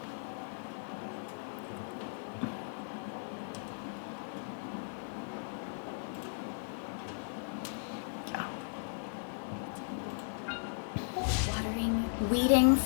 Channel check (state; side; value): silent; right; digital silence